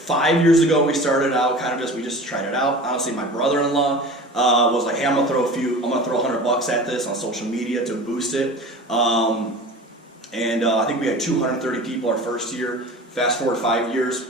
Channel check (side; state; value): both; normal; correlation 0.37